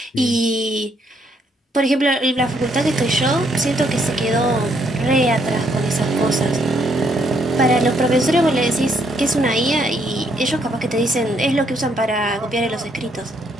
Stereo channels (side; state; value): both; normal; correlation 0.71